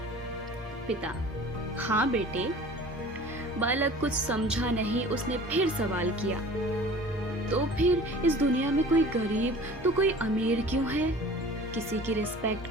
पिता, हाँ बेटे। बालक कुछ समझा नहीं, उसने फिर सवाल किया, तो फिर इस दुनिया में कोई गरीब तो कोई अमीर क्यों है? किसी की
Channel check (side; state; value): both; normal; correlation 0.44